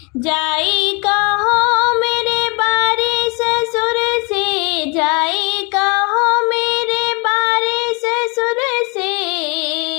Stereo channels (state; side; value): quieter; right; 31.4 dB